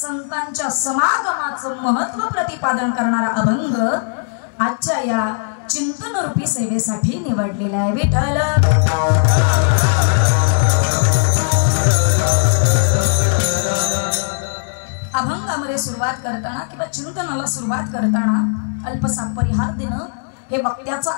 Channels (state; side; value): silent; right; 68 dB below the other